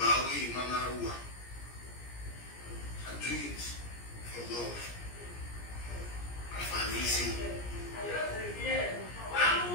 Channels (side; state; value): right; late; 17 ms